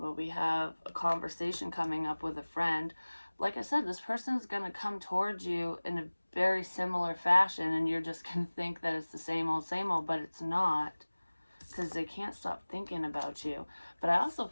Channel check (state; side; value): inverted; both; correlation -1.00